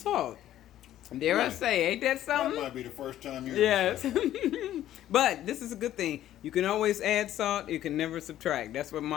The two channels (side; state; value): right; quieter; 12.6 dB